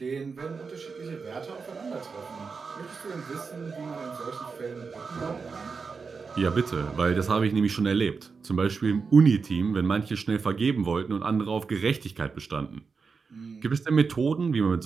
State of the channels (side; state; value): left; quieter; 5.0 dB